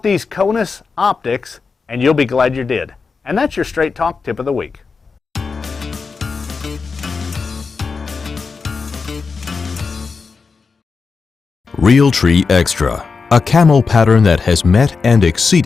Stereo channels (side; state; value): right; quieter; 4.9 dB